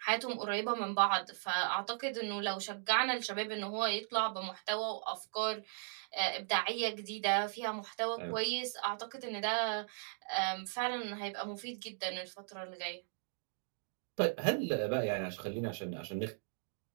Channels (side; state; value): left; silent; digital silence